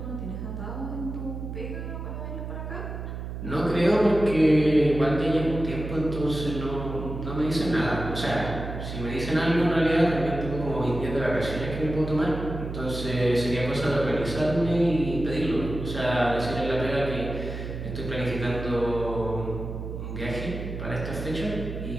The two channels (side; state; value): right; noise; hum, 7 dB below the sound